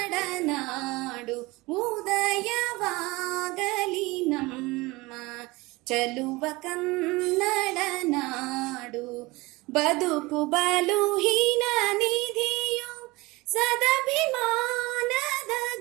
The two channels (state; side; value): quieter; left; 22.5 dB